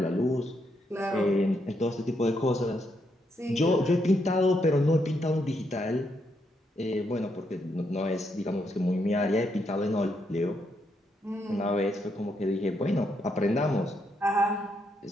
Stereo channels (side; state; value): both; normal; correlation 0.78